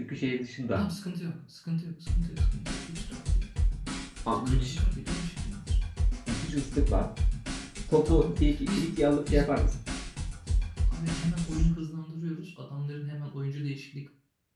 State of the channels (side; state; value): both; identical; correlation 1.00